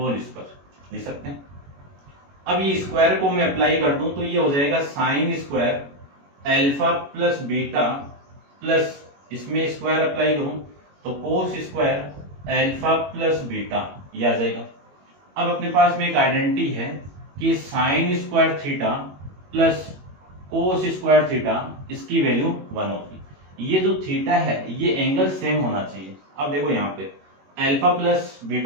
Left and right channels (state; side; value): late; left; 21 ms